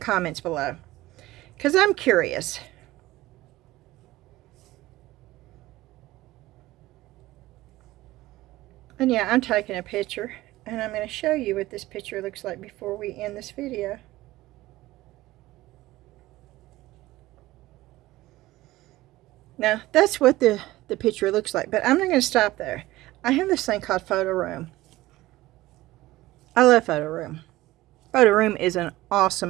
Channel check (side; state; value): left; quieter; 17.5 dB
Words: below, because I'm curious. And yeah, I'm taking a picture, and I'm going to show you what this picture looks like before we end this video. Now, that's what the picture looks like, but I'm not going to stop there. I have this thing called Photo Room. I love Photo Room. Photo Room is an